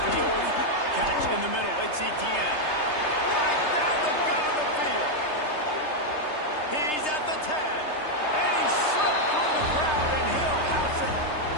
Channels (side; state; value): right; late; 3.3 ms